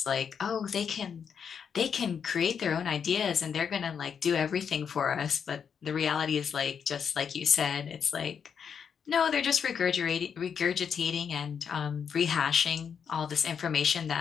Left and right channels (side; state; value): right; quieter; 7.1 dB